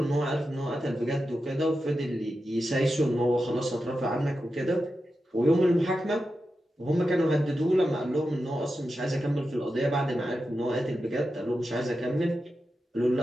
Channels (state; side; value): normal; both; correlation 0.90